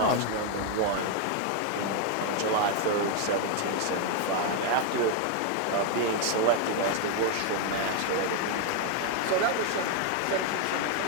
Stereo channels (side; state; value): both; different; correlation 0.01